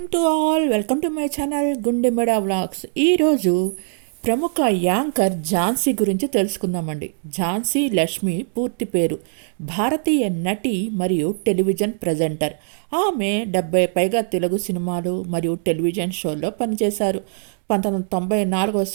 to all. Welcome to my channel గుండెమడ vlogs. ఈరోజు ప్రముఖ anchor Jhansi గురించి తెలుసుకుందామండి. ఝాన్సీ లక్ష్మి పూర్తి పేరు. భారతీయ నటి మరియు టెలివిజన్ ప్రజెంటర్. ఆమె 70 పైగా తెలుగు సినిమాలు మరియు టెలివిజన్ షోల్లో పనిచేశారు. 1994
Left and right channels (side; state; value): left; silent; digital silence